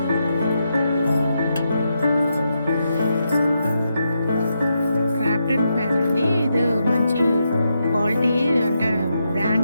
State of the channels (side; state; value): both; inverted; correlation -0.83